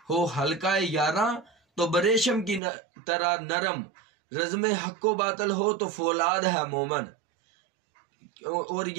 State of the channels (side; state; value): left; drops out; at 2.6 s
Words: हो हल्का यारा तो बरेशम की तरह नरम, रज़्म हक्को बातल हो तो फौलाद है मोमन। और